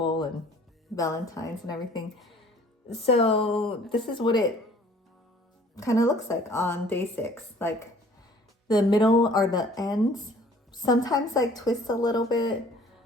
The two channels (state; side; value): normal; both; correlation 0.54